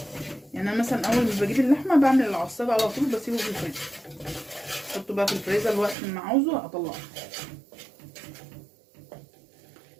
انا مثلا اول ما بجيب اللحمه بعمل العصاج على طول، بسيبه في الفريزر، احطه بقى في الفريزر وقت ما عاوزه اطلعه.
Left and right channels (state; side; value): drops out; left; at 6.0 s